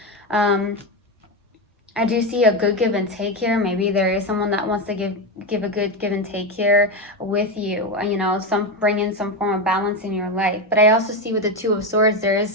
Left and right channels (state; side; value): normal; both; correlation 0.13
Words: I do see a good give and take here. Maybe there is someone that wants to give a good give and take here with you. You know, bring in some form of balance in your life. But I also see with the Two of Swords, there is